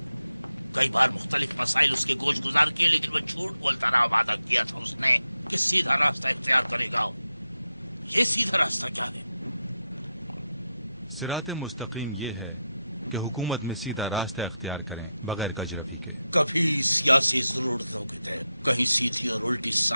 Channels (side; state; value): both; inverted; correlation -0.89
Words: کئی بار مختلف مسائل اس کے گوش گزار کیے لیکن وہ جھوٹ بولتا رہا. وعدہ کیا تھا اس نے کہ سیدھا راستہ اختیار کرے گا. یہ سیدھا راستہ کیا ہے؟ کبھی سیاسی ضرورتوں کے تحت کہیں سیدھی اور الٹی